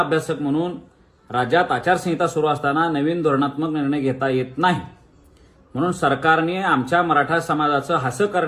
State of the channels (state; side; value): identical; both; correlation 1.00